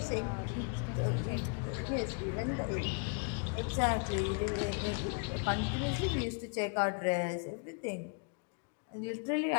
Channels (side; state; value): right; quieter; 39.2 dB